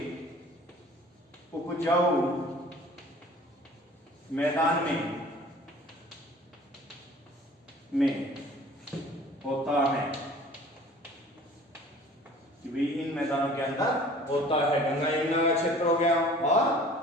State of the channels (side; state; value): both; normal; correlation 0.48